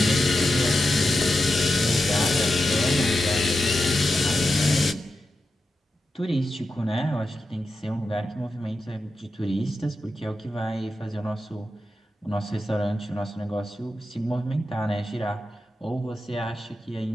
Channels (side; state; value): both; normal; correlation 0.89